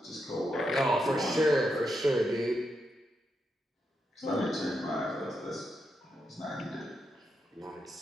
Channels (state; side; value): normal; both; correlation 0.84